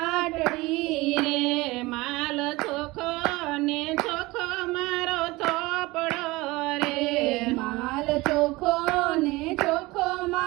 રે, માલ ચોખ્ખો ને ચોખ્ખો મારો ચોપડો રે, માલ ચોખ્ખો ને ચોખ્ખો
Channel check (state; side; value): quieter; left; 21.4 dB